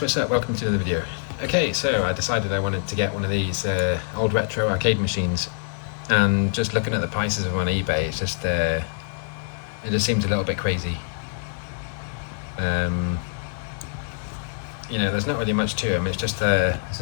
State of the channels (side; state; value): right; silent; 55 dB below the other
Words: what's up? Welcome to another video. Okay, so I decided I wanted to get one of these old retro arcade machines, and just looking at the prices of them on eBay, it just seems a little bit crazy. You know, there's not really much to them. It's just